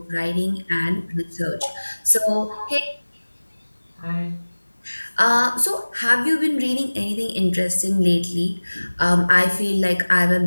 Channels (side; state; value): both; inverted; correlation -1.00